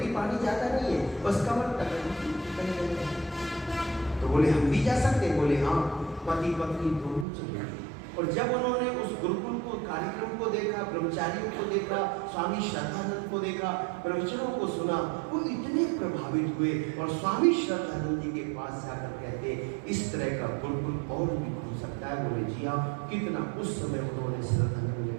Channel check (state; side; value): drops out; left; at 7.2 s